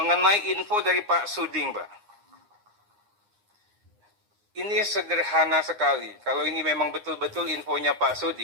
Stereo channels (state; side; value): late; left; 9.7 ms